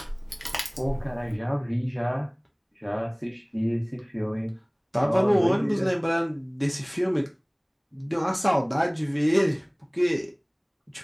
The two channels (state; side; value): identical; both; correlation 1.00